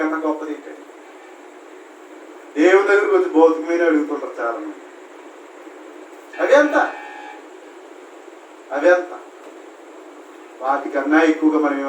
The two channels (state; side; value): identical; both; correlation 1.00